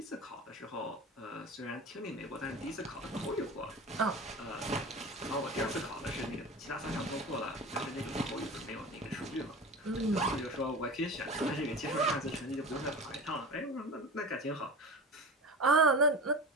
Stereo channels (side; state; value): both; normal; correlation 0.31